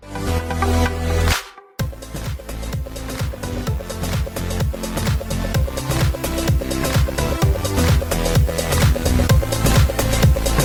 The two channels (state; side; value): identical; both; correlation 1.00